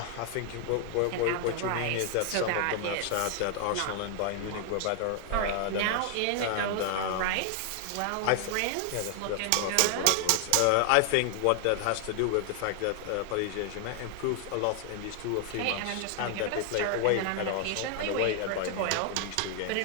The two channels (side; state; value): both; different; correlation 0.00